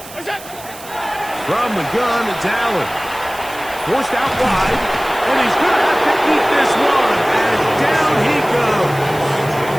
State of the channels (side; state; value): right; noise; hiss, 16 dB below the sound